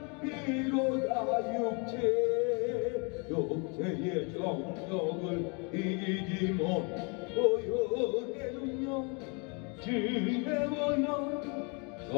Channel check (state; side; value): quieter; right; 33.8 dB